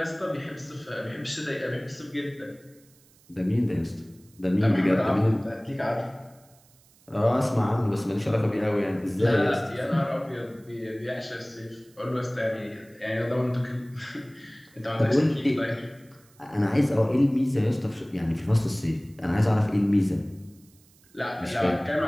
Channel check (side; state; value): right; noise; hiss, 29 dB below the sound